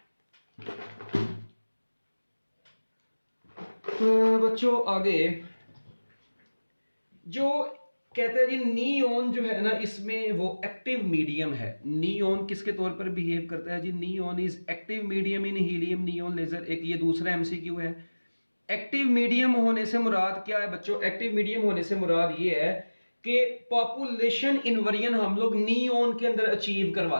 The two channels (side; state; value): both; inverted; correlation -1.00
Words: तो बच्चों आगे जो कहते हैं जी नियॉन जो है ना, इसमें वो एक्टिव मीडियम है। नियॉन किसके तौर पर बिहेव करता है जी, neon is active medium in helium neon laser. एक ये दूसरा एमसीक्यू है। एक्टिव मीडियम होने से मुराद क्या है बच्चों, एक्टिव मीडियम होने से मुराद ये है कि पॉपुलेशन इन्वर्जन हम लोग नियॉन के अंदर अचीव